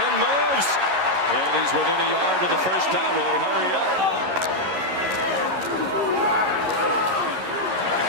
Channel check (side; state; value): left; late; 11 ms